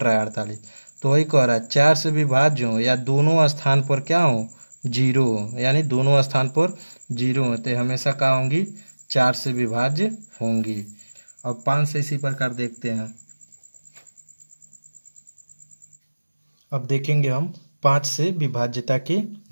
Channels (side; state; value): both; inverted; correlation -1.00